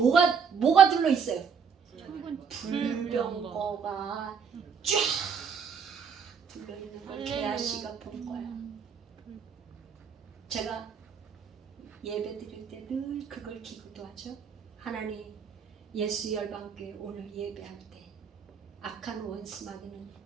둘러 있어요? 불병거가 쫙 둘러 있는 걸 게하시가 본 거야. 제가 예배 드릴 때 늘 그걸 기도하죠. 하나님, 예수 열방교회 오늘 예배할 때 악한 원수마귀는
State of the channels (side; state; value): left; quieter; 6.5 dB